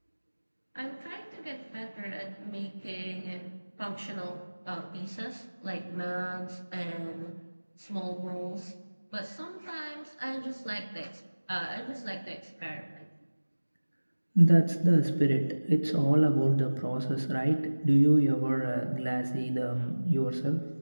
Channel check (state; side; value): inverted; both; correlation -1.00